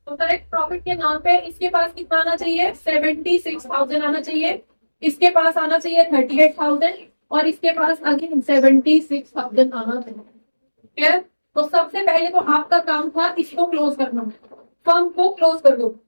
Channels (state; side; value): inverted; both; correlation -1.00